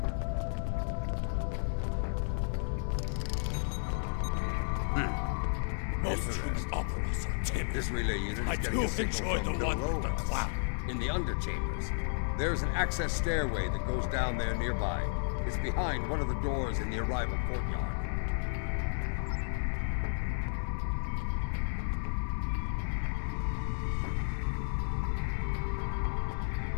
Most human operas are timid. This relay unit is I getting do a signal enjoy from the one with the below us, cloud. in the underchambers. There's an access stairway that goes down there nearby. It's behind one of the doors in the arrival courtyard.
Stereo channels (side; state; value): right; silent; digital silence